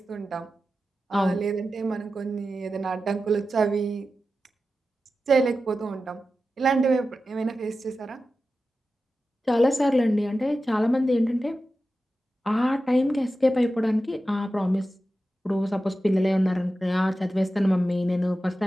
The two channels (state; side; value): normal; both; correlation 0.93